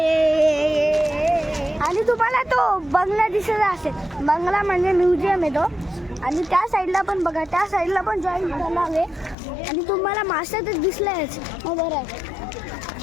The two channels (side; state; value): right; drops out; at 9.3 s